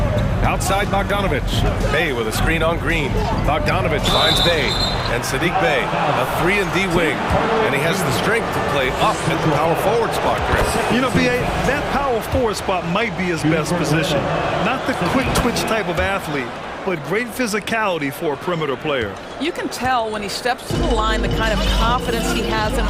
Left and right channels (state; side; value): identical; both; correlation 1.00